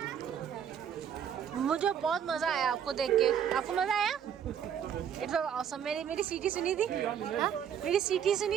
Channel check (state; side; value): quieter; left; 8.6 dB